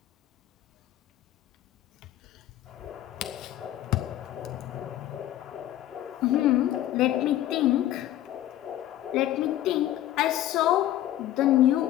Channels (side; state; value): right; quieter; 13.2 dB